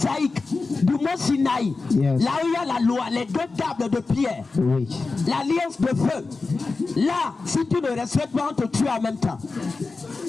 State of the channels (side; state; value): right; quieter; 3.9 dB